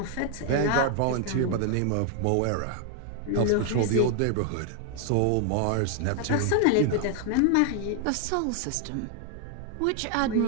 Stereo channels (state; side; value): different; both; correlation 0.00